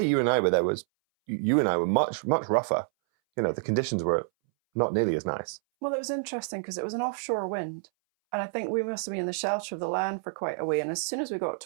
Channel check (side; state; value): left; silent; 59 dB below the other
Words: you and I were there you and I were much, much rougher. The conditions were not nearly as nice. Well, it was interesting because it was an offshore wind. And I think we must have been in the shelter of the land for quite a way. And as soon as we got